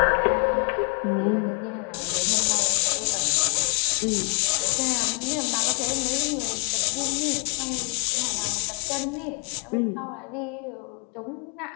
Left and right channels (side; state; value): right; quieter; 39.0 dB